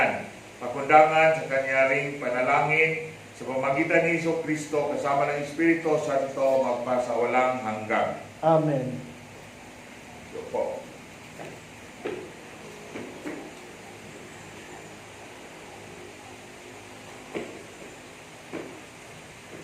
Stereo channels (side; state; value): both; identical; correlation 1.00